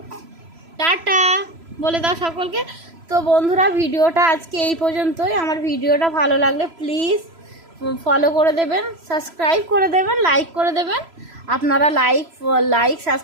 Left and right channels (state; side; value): late; left; 3.0 ms